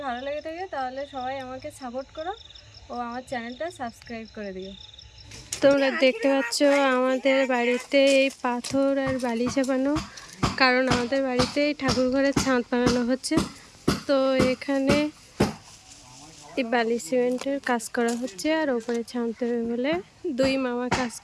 ভালো লেগে থাকে, তাহলে সবাই আমাকে সাপোর্ট করো ও আমার চ্যানেলটা সাবস্ক্রাইব করে দিও। তোমরা দেখতে পাচ্ছ আমাদের বাড়িতে এই পাথর আর বালি চাপানো, কারণ আমাদের বাড়িতে ঠাকুর ঘরের ছাদ বানানো হচ্ছে। তো এখানে এই বালি সিমেন্টের কাজ করা হচ্ছে আর ওপরে ছাদ দেবে বলে দুই মামা কাজ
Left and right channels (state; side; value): identical; both; correlation 1.00